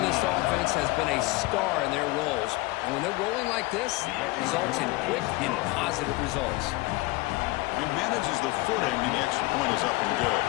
this offense has been a star in their roles. And when they're rolling like this, it results in quick and positive results. He manages the footing, and the extra point is up and good.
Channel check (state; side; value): quieter; right; 21.2 dB